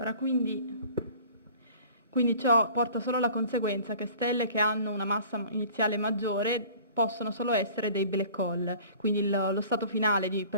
quindi ciò porta solo alla conseguenza che stelle che hanno una massa iniziale maggiore possono solo essere dei black hole, quindi lo stato finale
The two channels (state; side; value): inverted; both; correlation -0.47